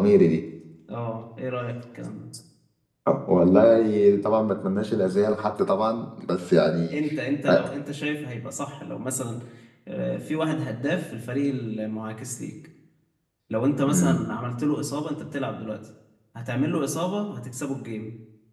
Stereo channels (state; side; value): identical; both; correlation 1.00